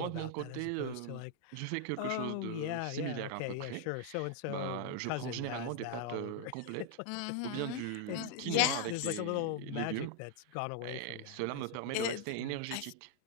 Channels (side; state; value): both; different; correlation 0.00